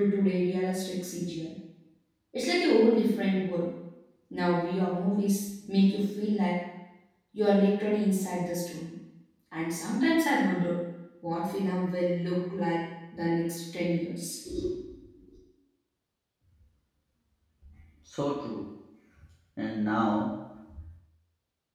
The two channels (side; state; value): both; identical; correlation 1.00